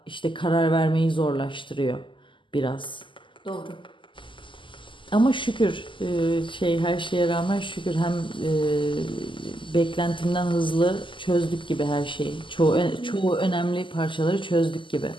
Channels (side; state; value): right; late; 0.25 ms